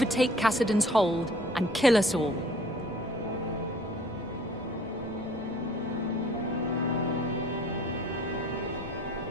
Cassidon's hold and kill us all.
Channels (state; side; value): normal; both; correlation 0.52